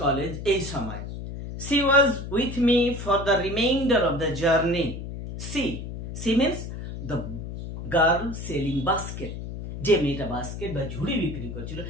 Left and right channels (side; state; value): left; noise; hum, 8 dB below the sound